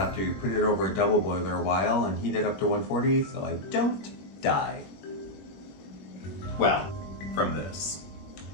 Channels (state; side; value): late; right; 21 ms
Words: to put it over a double boiler a while and heat it up to 140 so I don't die. Well, from this.